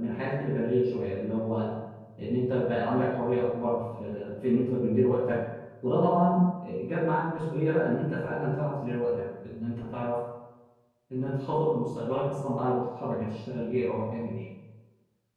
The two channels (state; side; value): identical; both; correlation 1.00